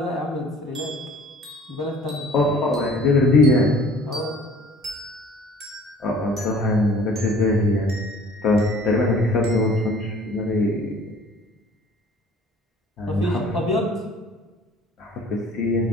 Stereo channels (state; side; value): normal; both; correlation 0.51